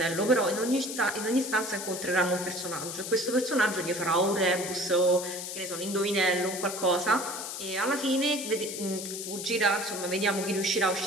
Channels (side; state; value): left; noise; hiss, 7 dB below the sound